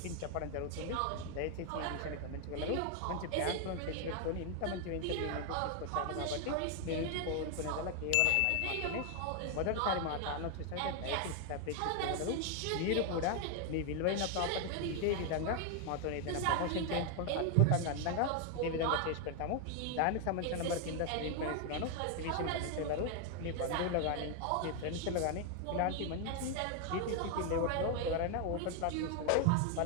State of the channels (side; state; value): both; different; correlation 0.00